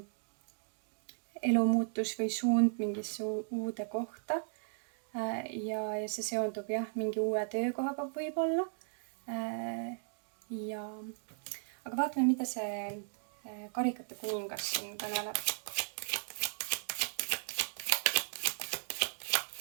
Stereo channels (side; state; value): left; silent; digital silence